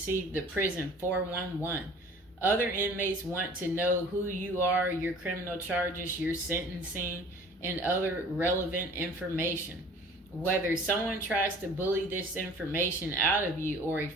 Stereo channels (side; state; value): both; normal; correlation 0.48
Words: the prison 411. Other inmates want to know who you are, your criminal charges, your sentencing, and other relevant information. Whether someone tries to bully this information out of you or a